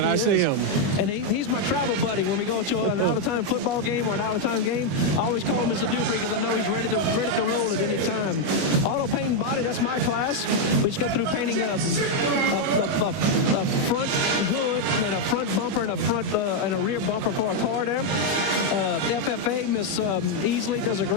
I see him. And he's my travel buddy. When we go to an out-of-time football game or an out-of-time game, I always call Mr. Dupree because I know he's ready to roll at any time. Auto paint and body, that's my class. We just got through painting a front hood and a front bumper and a rear bumper for a car there. FFA, Miss Easley does a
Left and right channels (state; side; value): late; left; 21 ms